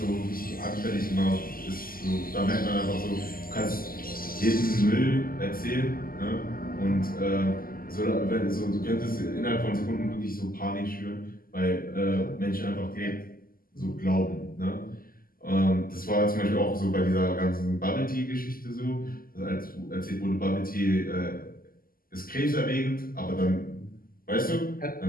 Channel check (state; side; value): late; right; 0.42 ms